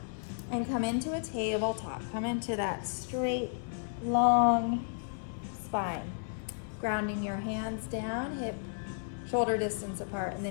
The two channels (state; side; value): silent; right; digital silence